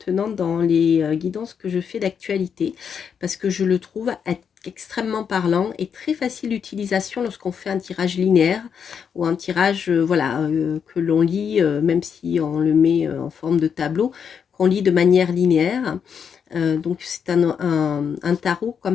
dans les guidances que je fais d'actualité, parce que je le trouve être extrêmement parlant et très facile d'utilisation lorsqu'on fait un tirage linéaire ou un tirage voilà, que l'on lit, même si on le met en forme de tableau, qu'on lit de manière linéaire. Donc c'est un tarot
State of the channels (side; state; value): right; quieter; 7.1 dB